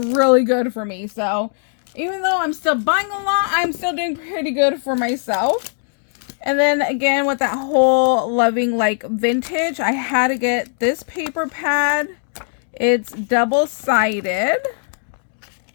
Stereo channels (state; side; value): silent; right; digital silence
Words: good for me. So even though I'm still buying a lot, I'm still doing pretty good for myself. And then again, with that whole loving like vintage, I had to get this paper pad. It's double-sided.